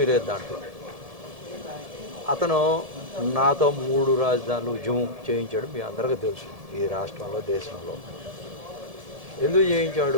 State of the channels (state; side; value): late; left; 1.7 ms